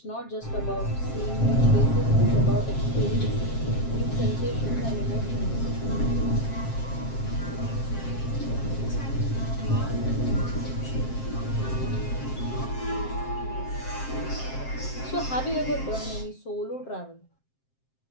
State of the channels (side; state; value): right; late; 7.6 ms